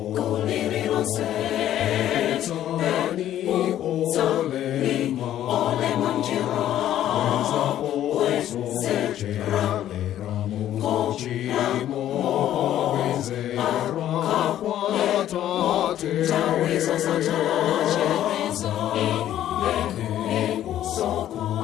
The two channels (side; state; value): right; quieter; 12.0 dB